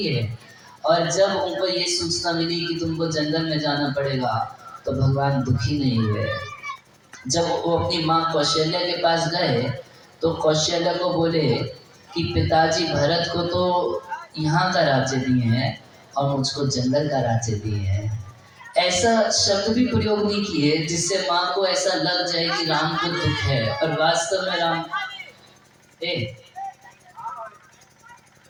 और जब उनको ये सूचना मिली कि तुमको जंगल में जाना पड़ेगा, तो भगवान दुखी नहीं हुए। जब वो अपनी माँ कौशल्या के पास गए तो कौशल्या को बोले कि पिताजी भरत को तो यहाँ का राज्य दिए हैं और मुझको जंगल का राज्य दिए हैं। ऐसा शब्द भी प्रयोग नहीं किए जिससे माँ को ऐसा लग जाए कि राम को दुख है, और वास्तव में राम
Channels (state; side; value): identical; both; correlation 1.00